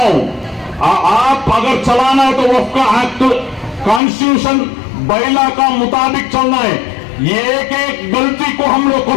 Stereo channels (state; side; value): drops out; right; at 4.0 s